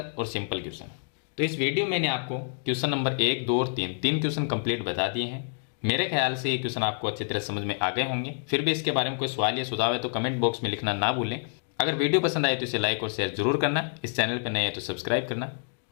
और सिंपल क्वेश्चन है। तो इस वीडियो में मैंने आपको क्वेश्चन नंबर 1, 2 और 3 क्वेश्चन कंप्लीट बता दिए हैं। मेरे ख्याल से ये क्वेश्चन आपको अच्छी तरह समझ में आ गए होंगे। फिर भी इसके बारे में कोई सवाल या सुझाव है तो कमेंट बॉक्स में लिखना ना भूलें। अगर वीडियो पसंद आए तो इसे लाइक और शेयर जरूर करना। इस चैनल पर नए हैं तो सब्सक्राइब करना।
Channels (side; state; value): right; silent; 60 dB below the other